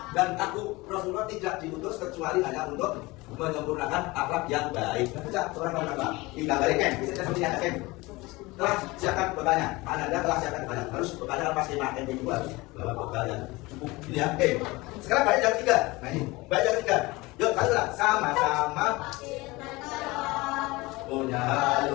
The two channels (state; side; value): quieter; right; 22.1 dB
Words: Dan aku Rasulullah tidak diutus kecuali hanya untuk menyempurnakan akhlak yang baik. Baca surah Al-Baqarah. Tidak balik kan? Bisa seperti yang kan? Telah siapkan bekalnya. Anda telah siapkan bekalnya. Harus bekalnya pasti makan yang dua. Bawa bekal yang cukup. Ini ya. Oke. Sekarang baik yang ketiga. Nah ini. Baik yang ketiga. Yuk, kalian sama-sama punya